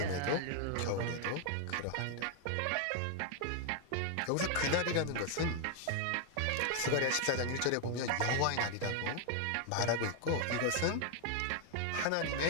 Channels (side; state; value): both; different; correlation 0.00